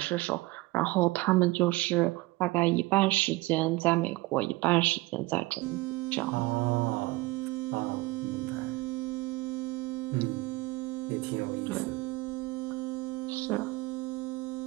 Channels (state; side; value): quieter; left; 20.9 dB